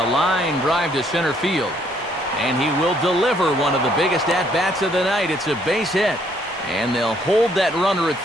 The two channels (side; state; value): both; normal; correlation 0.67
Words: line drive to center field. And he will deliver one of the biggest at-bats of the night. It's a base hit. And they'll hold that runner at